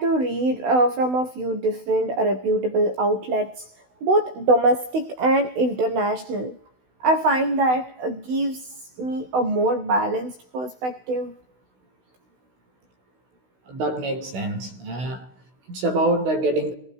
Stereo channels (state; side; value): late; left; 16 ms